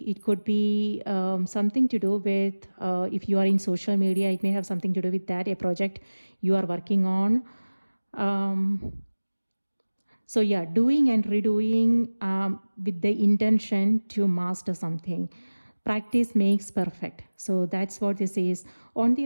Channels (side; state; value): both; inverted; correlation -1.00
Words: it could be something to do with, if you are in social media, it may have something to do with that, a project you are working on. So yeah, doing and redoing with the intention to master something. Practice makes perfect. So that's what this is. On the